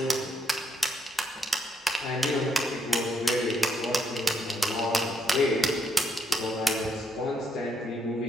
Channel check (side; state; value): both; normal; correlation 0.75